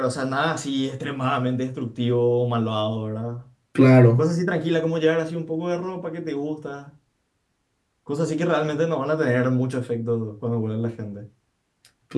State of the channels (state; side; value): identical; both; correlation 1.00